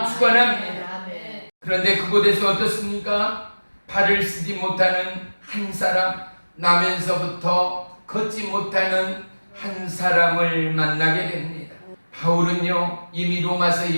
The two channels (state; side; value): inverted; both; correlation -1.00